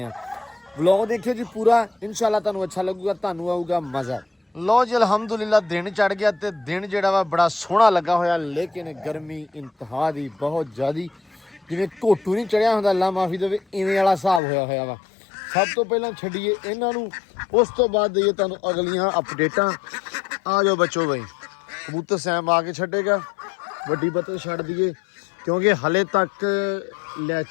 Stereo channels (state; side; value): drops out; right; at 14.4 s